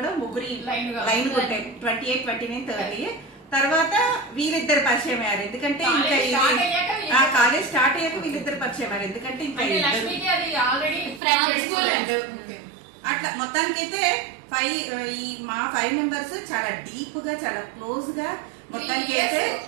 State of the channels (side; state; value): left; drops out; at 11.2 s